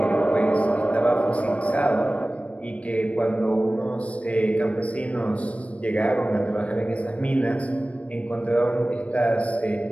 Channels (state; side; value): late; right; 0.064 ms